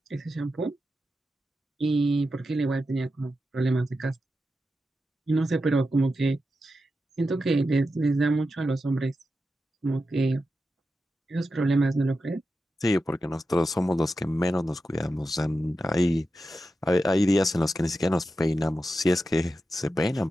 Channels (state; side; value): normal; both; correlation 0.90